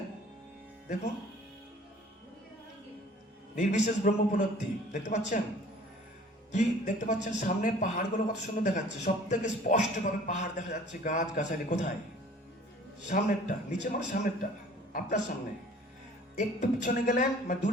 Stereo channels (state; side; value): normal; both; correlation 0.50